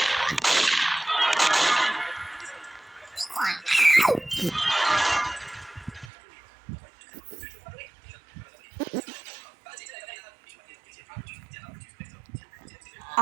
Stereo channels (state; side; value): drops out; left; at 6.1 s